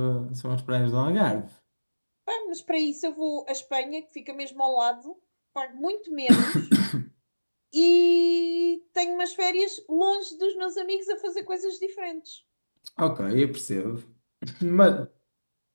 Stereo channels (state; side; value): inverted; both; correlation -1.00